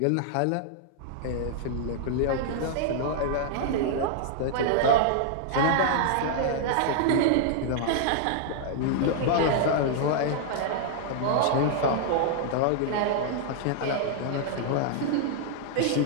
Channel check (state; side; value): different; both; correlation -0.01